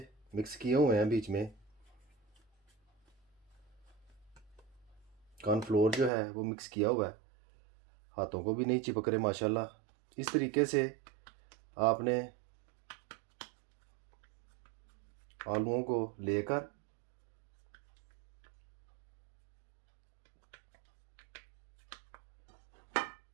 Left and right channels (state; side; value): drops out; left; at 6.1 s